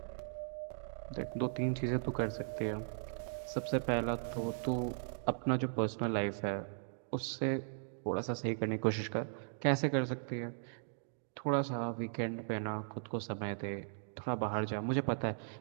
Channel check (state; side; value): silent; left; digital silence